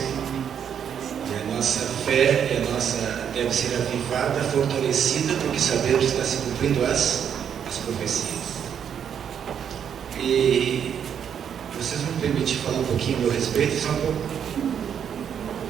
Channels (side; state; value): left; quieter; 8.3 dB